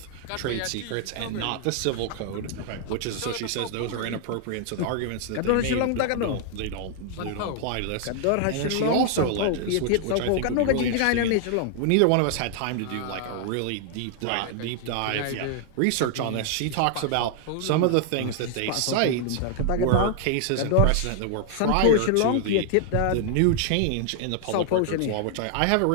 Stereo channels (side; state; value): both; different; correlation 0.00